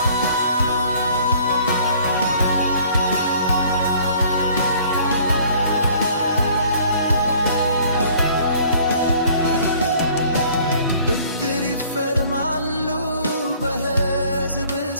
ብድር ይፈርማሉ በሕዝብ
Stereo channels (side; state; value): both; inverted; correlation -0.55